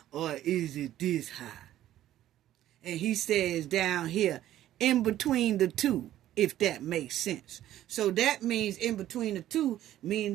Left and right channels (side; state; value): left; quieter; 13.0 dB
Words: or is it this high? And he says down here, in between the two, if that makes sense. So that means in between the two,